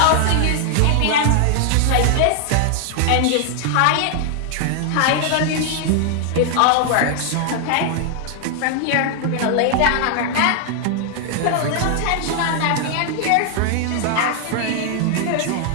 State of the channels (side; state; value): both; different; correlation 0.00